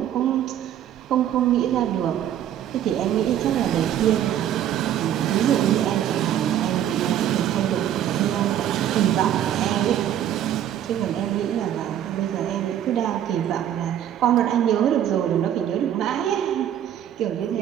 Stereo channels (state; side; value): quieter; left; 10.8 dB